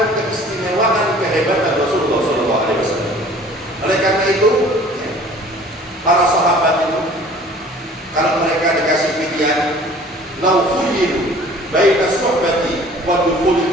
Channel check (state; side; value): normal; both; correlation 0.50